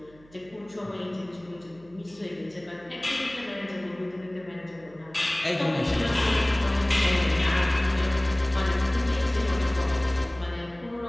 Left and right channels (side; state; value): right; noise; hum, 27 dB below the sound